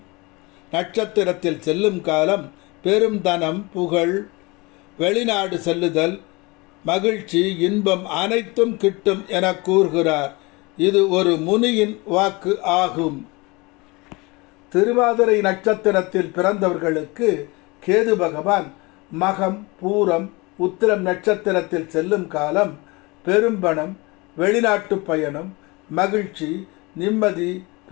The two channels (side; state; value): right; quieter; 25.2 dB